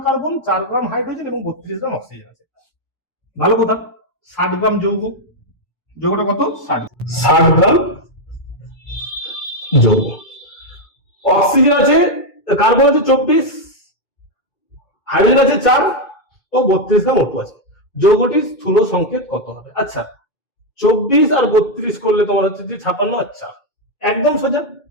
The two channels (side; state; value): right; late; 2.3 ms